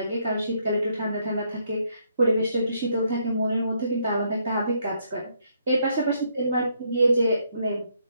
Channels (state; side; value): inverted; both; correlation -0.73